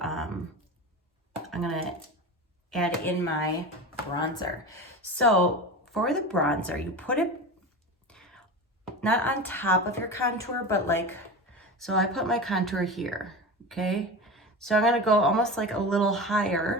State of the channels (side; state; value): both; normal; correlation 0.27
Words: gonna add in my bronzer. So for the bronzer, you put it not on top of your contour, but like, so I put my contour here, okay? So I'm gonna go almost like a little